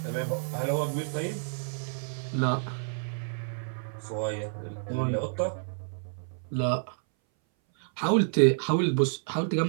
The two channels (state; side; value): silent; left; 58 dB below the other